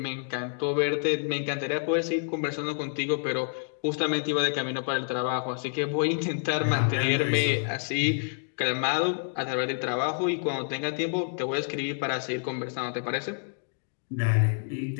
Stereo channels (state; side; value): silent; right; 59 dB below the other